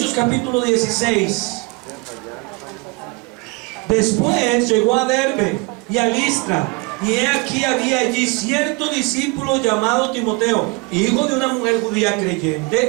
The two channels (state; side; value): quieter; left; 27.2 dB